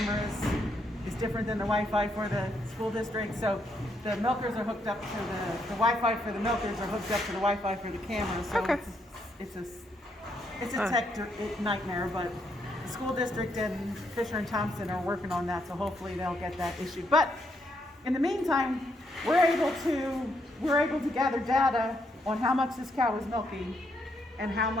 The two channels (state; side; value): normal; both; correlation 0.76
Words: is different than the Wi-Fi for the school district. So the milkers are hooked up to the Wi-Fi for the milkers are hooked up to the Wi-Fi for the cameras. So Okay. it's a tech nightmare, but the school district and Fisher and Thompson are working on that. So hopefully they'll get that issued. But in the meantime, we're able to gather data on how much this cow is milking and how